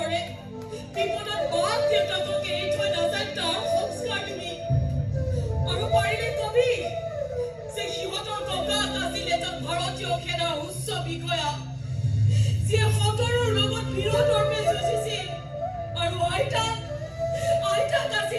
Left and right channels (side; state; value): both; identical; correlation 1.00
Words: বিপদত মাক দেউতাকক এৰি থৈ নাযায় তাৰ সংস্কাৰ দিবি আৰু পাৰিলে কবি যে সিহঁতৰ ককাক আছিল এজন ভাৰতীয় সেনাৰ উচ্চ বিষয়া যিয়ে সতৰৰ লগত বিৰোধৰ্মে যুঁজিছিল আৰু আইতাক